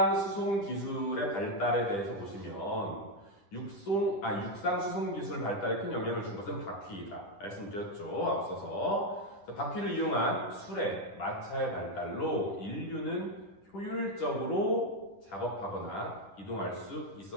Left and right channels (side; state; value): right; late; 10 ms